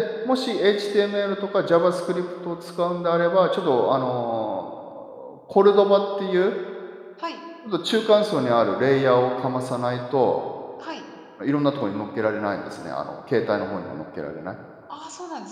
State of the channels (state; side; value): identical; both; correlation 1.00